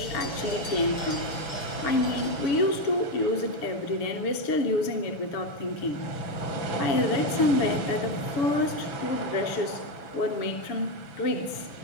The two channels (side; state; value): right; late; 7.0 ms